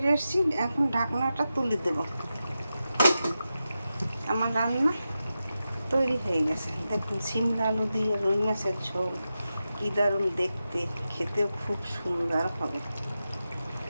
এসেছি। এখন ঢাকনাটা তুলে দেব। আমার রান্না তৈরি হয়ে গেছে। দেখুন, সিমলা আলু দিয়ে রুই মাছের ঝোল কী দারুণ দেখতে, খেতেও খুব সুন্দর হবে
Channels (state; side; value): inverted; both; correlation -0.91